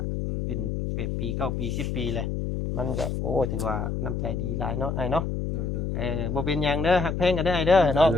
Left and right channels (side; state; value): left; noise; hum, 2 dB below the sound